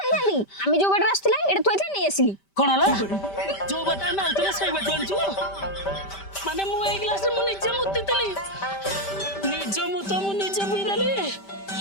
ଆଣିଥାନ୍ତି? ଆମେ ଯୋଉ ବାଟରେ ଆସିଥିଲେ ଏଇଟା ଥୋଇଥିଲେ ନେଇ ଆସିଲି। କଣ ହେଲା? ଯୋଉ ବାଟ ଆମେ ଆଉଥିଲେ ସେଇ ବାଟ ଆଣିଛୁ? ମାନେ ମୁଁ ଏଇ ଗ୍ଲାସରେ ମୁଁ ନିଜେ ମୁତିଥିଲି ମୁଁ ନିଜେ ପିଇଦେଲି।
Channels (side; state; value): right; late; 5.1 ms